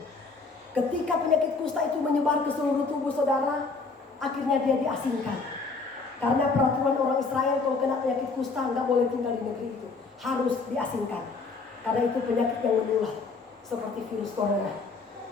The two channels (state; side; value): quieter; right; 4.2 dB